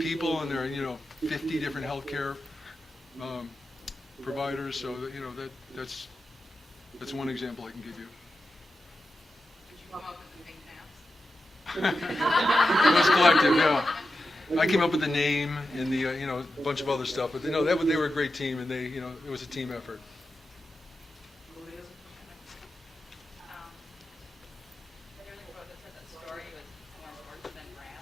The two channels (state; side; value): normal; both; correlation 0.90